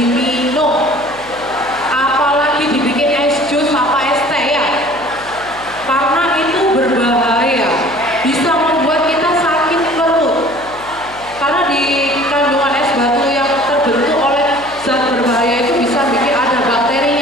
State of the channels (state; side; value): noise; left; hum, 21 dB below the sound